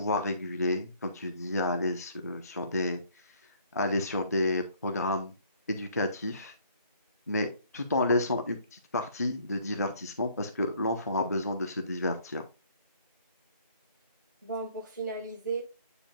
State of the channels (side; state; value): both; inverted; correlation -0.60